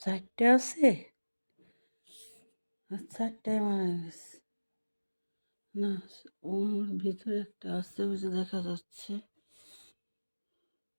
4টে আছে। 4টায় মারা গেছে না? ওর ভিতরে একটা আছে, ওই যে দেখা যাচ্ছে।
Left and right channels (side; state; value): both; inverted; correlation -1.00